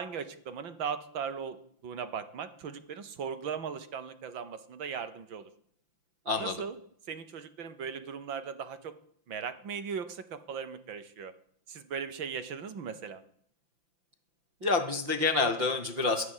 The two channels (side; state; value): left; late; 5.9 ms